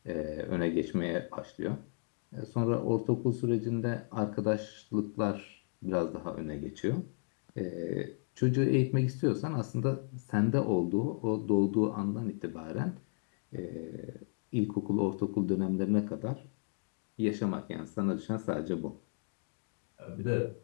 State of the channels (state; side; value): silent; right; 55 dB below the other